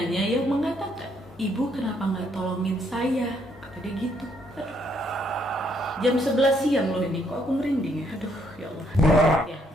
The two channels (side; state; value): both; normal; correlation 0.71